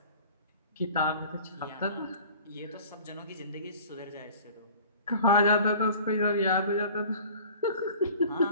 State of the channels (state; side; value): inverted; both; correlation -0.44